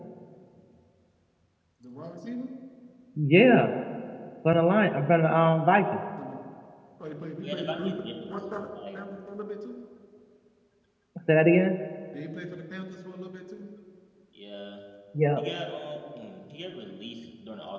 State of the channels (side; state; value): both; identical; correlation 1.00